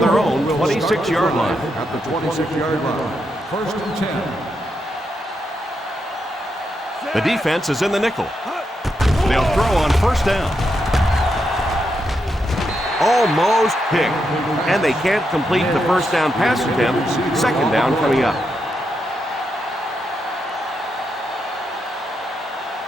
own 26-yard line. At the 26-yard line. First and 10. The defense is in the nickel. They'll throw on first down. Almost picked. And they can't complete the first down pass attempt. Second down coming up.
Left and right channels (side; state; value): both; normal; correlation 0.83